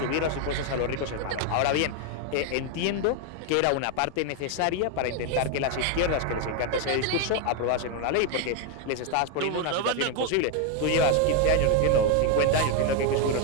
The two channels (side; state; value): both; different; correlation 0.01